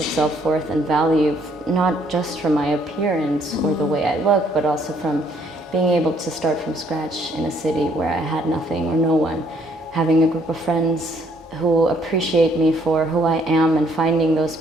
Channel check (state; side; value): normal; both; correlation 0.66